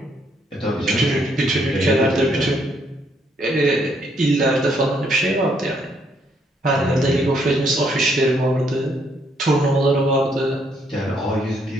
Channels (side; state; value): both; normal; correlation 0.71